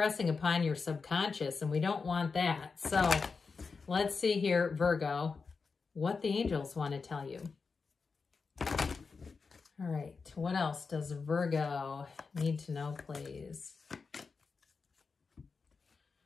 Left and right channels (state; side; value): quieter; right; 4.8 dB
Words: upon your subconscious, and we don't want that. So let's see here, Virgo, what the angels want to tell you. All right, what else does Virgo need to know, please?